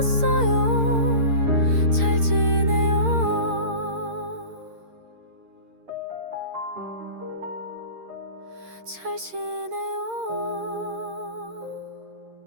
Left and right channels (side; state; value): left; late; 8.7 ms